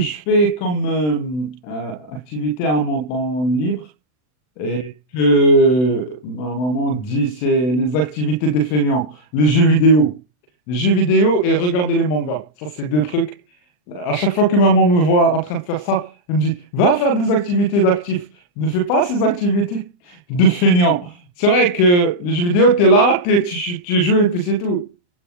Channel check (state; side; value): late; right; 40 ms